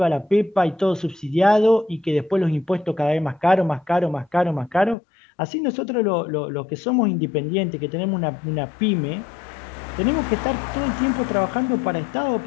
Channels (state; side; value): drops out; right; at 5.0 s